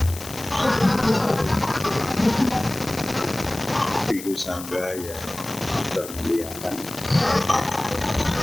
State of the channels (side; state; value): left; noise; hiss, 12 dB below the sound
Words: Biku Sangga yang termuliakan,